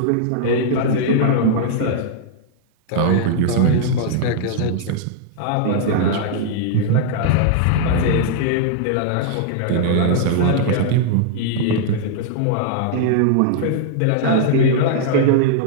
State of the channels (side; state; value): both; different; correlation -0.01